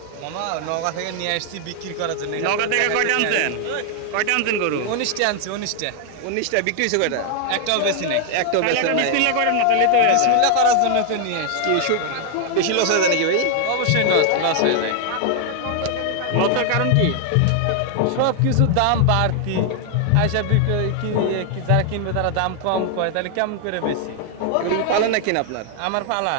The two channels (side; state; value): both; different; correlation 0.00